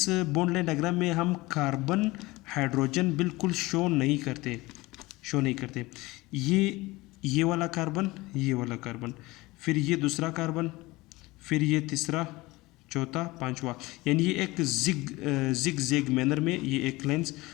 बॉन्ड लाइन डायग्राम में हम कार्बन हाइड्रोजन बिल्कुल शो नहीं करते। ये वाला कार्बन, ये वाला कार्बन, फिर ये दूसरा कार्बन, फिर ये तीसरा, चौथा, पांचवा, यानी ये एक जिग जैग मैनर में ये एक लाइन्स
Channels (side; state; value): right; quieter; 21.0 dB